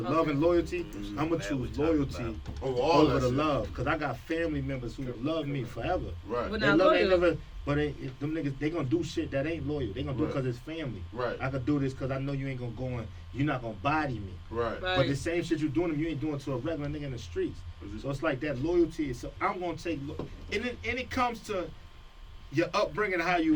love and loyalty, I'm gonna That we choose talking loyalty about. over the love, because I got family members who love me forever. Right. But They not love ain't loyal. never, but them niggas, they gonna do shit that ain't loyal. They gonna do it Right. because it's family. Right. I could do this because I know you ain't gonna go and you're not gonna body me. Right. But the same shit you doing them, you ain't doing to a regular nigga in the streets. So it's like that loyalty. So I'm gonna take, and it comes to your upbringing, how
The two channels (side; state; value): both; identical; correlation 1.00